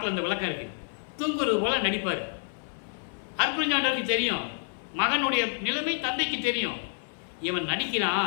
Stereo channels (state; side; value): silent; right; 56 dB below the other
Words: அந்த விளக்கம் இருக்கு, தூங்குறது போல நடிப்பார். அருப்பஞ்சாண்டருக்கு தெரியும், மகனுடைய நிலைமை தந்தைக்கு தெரியும், இவன்